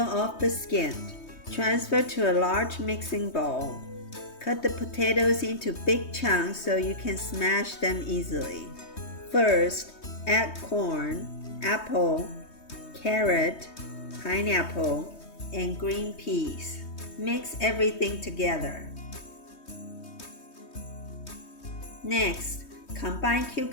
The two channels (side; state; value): right; late; 3.2 ms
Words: off the skin. Transfer to a large mixing bowl. Cut the potatoes into big chunks so you can smash them easily. First, add corn, apple, carrot, pineapple, and green peas. Mix everything together. Next, combine